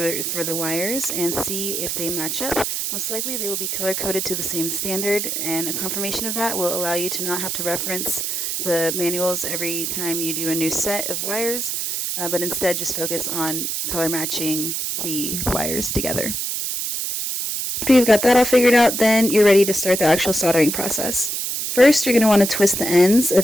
the wires and see if they match up. Most likely they will be color coded to the same standard, and a confirmation of that will allow you to not have to reference the manuals every time you do a new set of wires, but instead just focus on color matching the wires together. After you've got that all figured out, then you're ready to start the actual soldering process. First, you're going to want to twist the ends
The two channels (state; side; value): noise; right; hiss, 2 dB below the sound